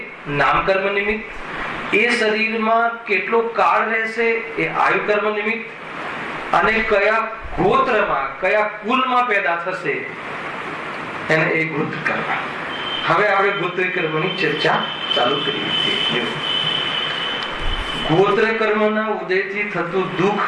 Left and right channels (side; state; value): both; identical; correlation 1.00